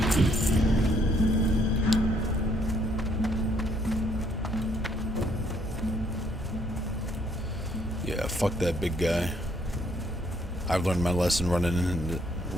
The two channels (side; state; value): both; normal; correlation 0.68